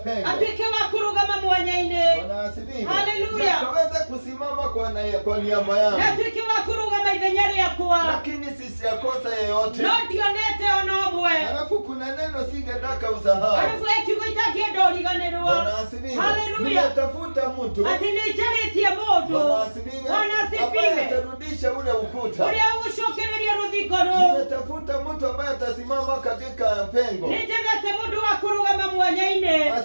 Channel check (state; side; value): inverted; both; correlation -1.00